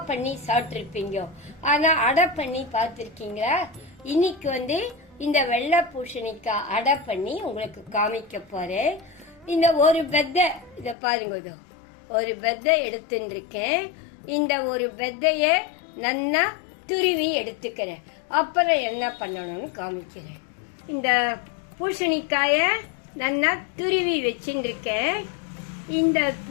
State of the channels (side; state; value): right; drops out; at 11.0 s